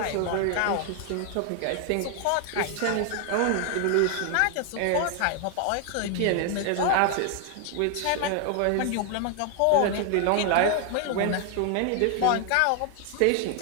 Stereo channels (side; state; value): both; different; correlation 0.00